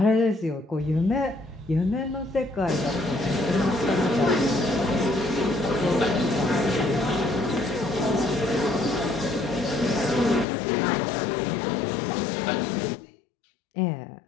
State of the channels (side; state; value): right; drops out; at 10.5 s